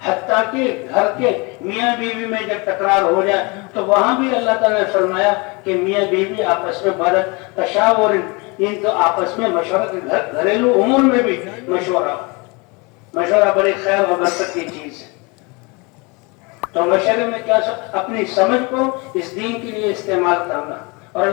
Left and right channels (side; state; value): right; quieter; 28.3 dB